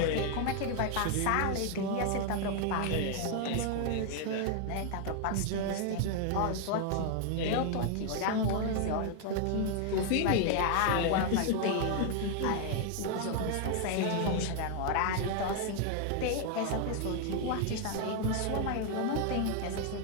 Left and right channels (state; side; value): different; both; correlation 0.00